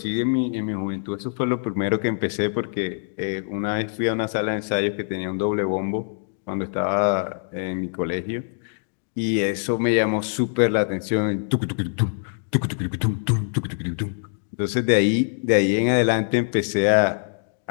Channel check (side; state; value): right; silent; digital silence